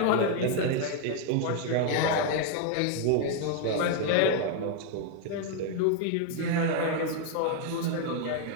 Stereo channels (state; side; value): different; both; correlation 0.00